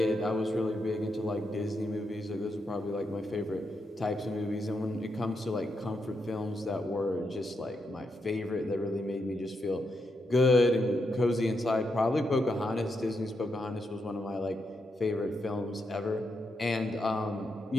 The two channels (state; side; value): normal; both; correlation 0.83